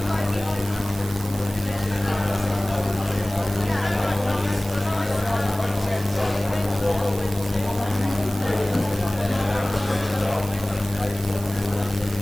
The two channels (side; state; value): right; noise; hiss, 15 dB below the sound